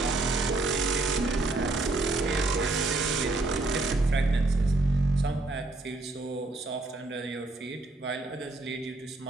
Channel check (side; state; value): left; quieter; 3.1 dB